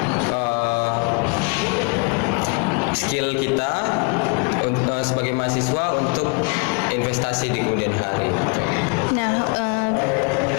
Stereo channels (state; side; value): quieter; right; 32.9 dB